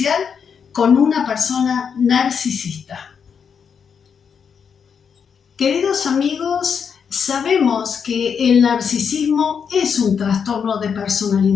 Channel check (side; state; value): right; quieter; 6.8 dB